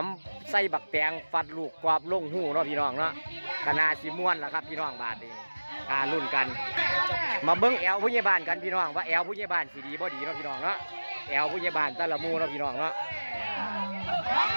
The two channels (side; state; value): both; inverted; correlation -1.00